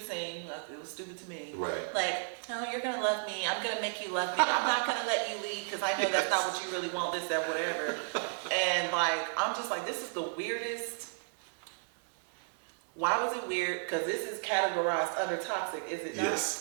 like, it was stupid to me. Right. Like, oh, you're going to love me. I'm going to make you love me. I'm not going to let you leave because I know that's not what you really want, this, that, whatever. And like, I'm just like, this is the weirdest. Why was it weird? Because this is categorized under toxic, is it not?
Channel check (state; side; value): silent; left; digital silence